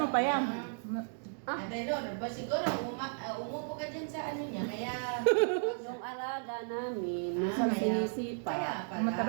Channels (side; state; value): left; silent; digital silence